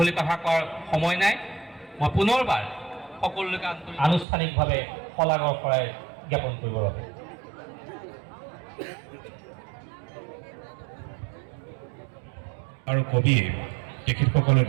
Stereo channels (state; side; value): drops out; left; at 4.2 s